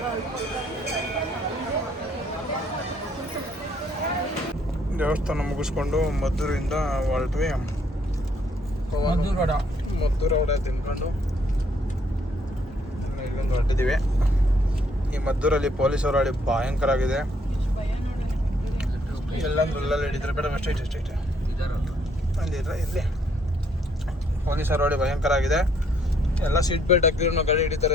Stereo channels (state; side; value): normal; both; correlation 0.68